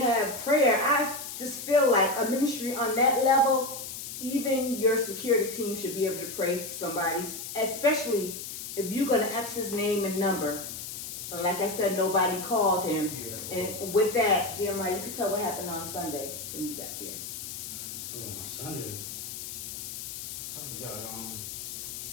have prayer. I just feel like a ministry on that level, even your security team should be able to pray for somebody, especially if you're going to ask his name and number. And like I said, nobody called him. Yeah. And with that, Jeremiah, you could tell what happened on Sunday when you got there. Oh, on Sunday? I forgot.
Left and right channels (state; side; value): noise; left; hiss, 8 dB below the sound